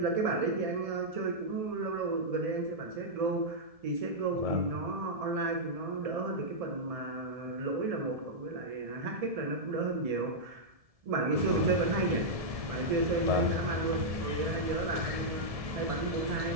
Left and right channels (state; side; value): late; left; 1.7 ms